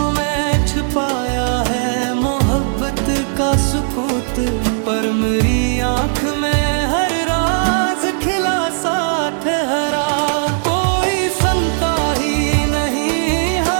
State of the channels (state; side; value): silent; left; 68 dB below the other